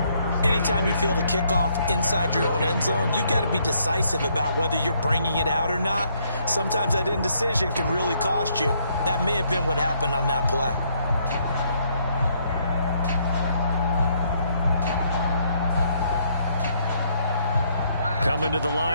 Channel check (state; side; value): inverted; both; correlation -0.70